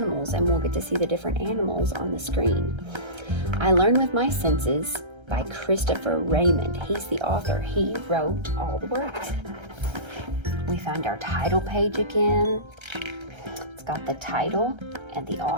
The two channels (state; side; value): late; left; 1.3 ms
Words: and we'll get to see the different animals on the screen. I Learn with My Senses by Christopher Raymond. He's the author. He wrote all the words. We found our title page again. It's got the title and the